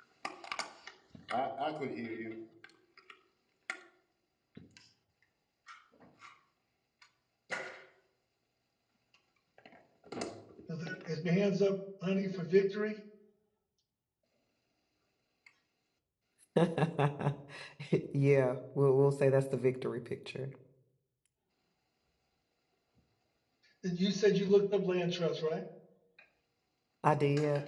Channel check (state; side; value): identical; both; correlation 1.00